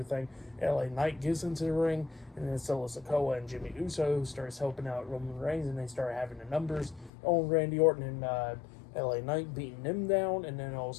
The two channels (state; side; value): drops out; right; at 7.1 s